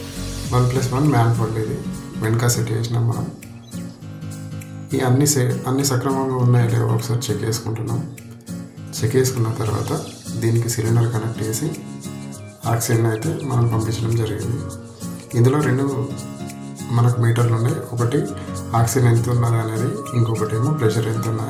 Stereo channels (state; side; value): identical; both; correlation 1.00